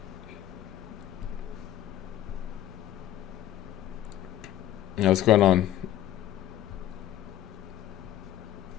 Yeah, what's going on?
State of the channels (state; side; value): quieter; right; 12.3 dB